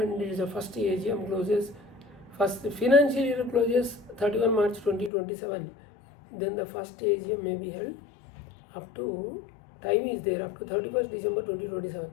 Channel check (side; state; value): right; drops out; at 5.1 s